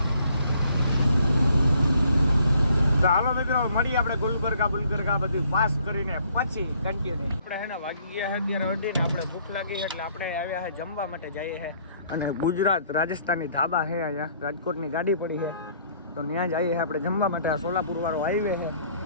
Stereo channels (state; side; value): inverted; both; correlation -0.63